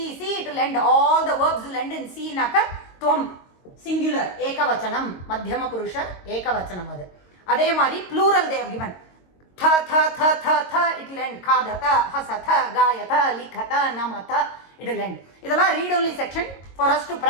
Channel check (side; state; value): right; late; 22 ms